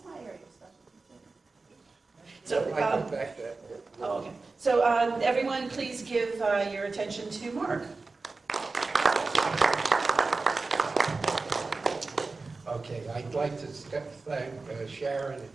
my area of specialty. So, I come back to that. oh, okay. So everyone, please give your attention to Mark. Okay, I'd like to thank Sharon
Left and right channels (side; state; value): left; quieter; 3.8 dB